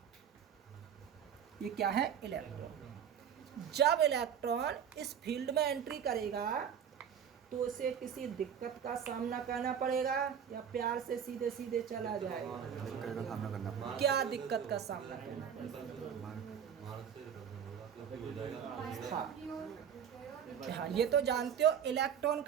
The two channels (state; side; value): quieter; left; 8.3 dB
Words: ये क्या है? इलेक्ट्रॉन। जब इलेक्ट्रॉन इस फील्ड में एंट्री करेगा तो उसे किसी दिक्कत का सामना करना पड़ेगा या प्यार से सीधे सीधे चला जाएगा? दिक्कत का सामना करना पड़ेगा। क्या दिक्कत का सामना करना पड़ेगा? हाँ, ये तो जानते हो, इलेक्ट्रॉन